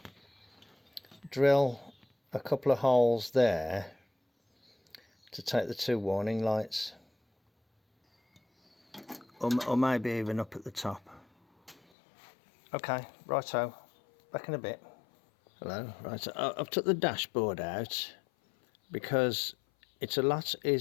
drill a couple of holes there to take the two warning lights, or maybe even up at the top. Okay, righto, back in a bit. Hello, right, I've took the dashboard out because it's a lot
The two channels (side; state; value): right; drops out; at 11.8 s